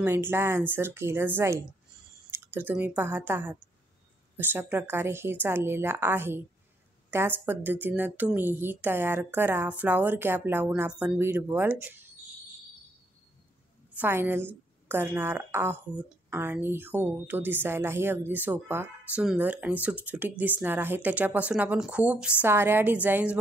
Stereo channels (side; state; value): both; normal; correlation 0.73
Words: आन्सर केलं जाईल. तर तुम्ही पाहत आहात अशा प्रकारे हे चाललेलं आहे. त्याच पद्धतीनं तुम्हीही तयार करा. फ्लॉवर कॅप लावून आपण बीड बॉल फायनल करणार आहोत. आणि हो, तो दिसायलाही अगदी सोपा, सुंदर आणि सुटसुटीत दिसणार आहे. त्याच्यापासून आपण खूप साऱ्या डिझाईन्स